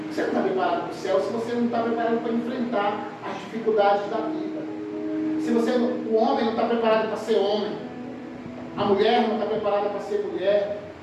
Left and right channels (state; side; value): identical; both; correlation 1.00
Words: Você não está preparado para o céu se você não está preparado para enfrentar as dificuldades da vida. Se o homem não está preparado para ser homem, a mulher não está preparada para ser mulher,